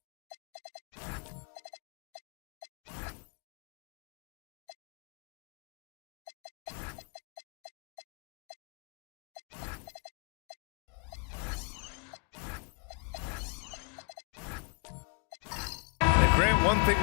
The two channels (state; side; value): quieter; right; 36.2 dB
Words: Grant, one thing